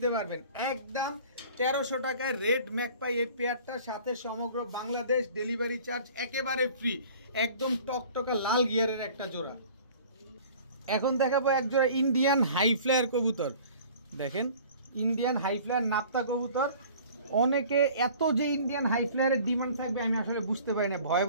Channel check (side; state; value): both; inverted; correlation -0.47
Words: পারবেন, একদম 1300 টাকায় রেড ম্যাকপাই এই পেয়ারটার সাথে সমগ্র বাংলাদেশ ডেলিভারি চার্জ একেবারে ফ্রি। একদম টকটকা লাল গিয়ারের একটা জোড়া। এখন দেখাবো এক জোড়া ইন্ডিয়ান হাই ফ্লায়ার কবুতর। দেখেন ইন্ডিয়ান হাই ফ্লায়ার নাপ্তা কবুতর। অনেকে এত যে ইন্ডিয়ান হাই ফ্লায়ারের ডিমান্ড থাকবে আমি আসলে বুঝতে পারি না। ভয়ে